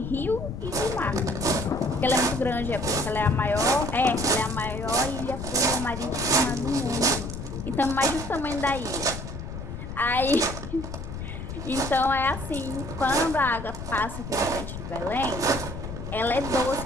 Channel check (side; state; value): left; noise; rumble, 8 dB below the sound